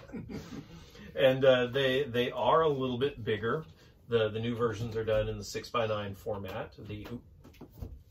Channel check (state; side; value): identical; both; correlation 1.00